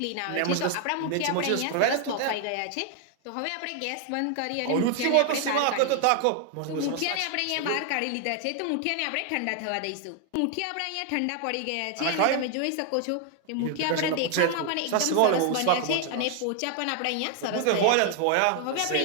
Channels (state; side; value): different; both; correlation 0.00